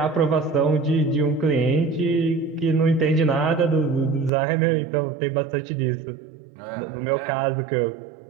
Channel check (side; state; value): left; drops out; at 4.3 s